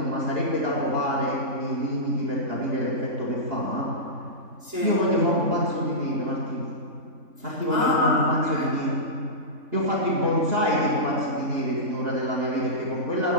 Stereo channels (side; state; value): left; late; 3.5 ms